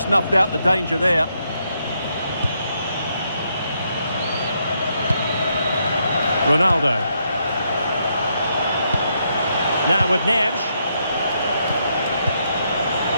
out the danger there. Ronaldo. Now with Neves.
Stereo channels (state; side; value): inverted; both; correlation -0.77